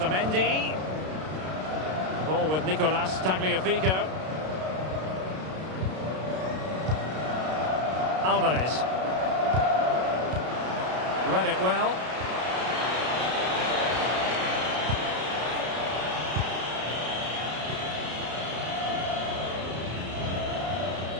Ball with Nicolas Tagliafico. Alvarez. Read it well.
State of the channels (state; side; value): late; left; 32 ms